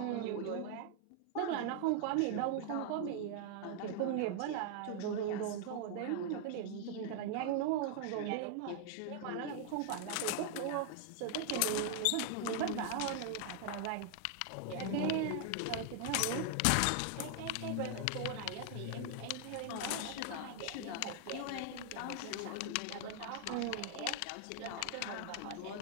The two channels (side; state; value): both; different; correlation 0.00